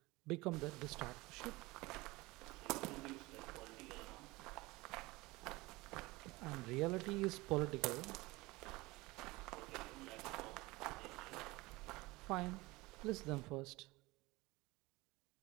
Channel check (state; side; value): quieter; left; 21.9 dB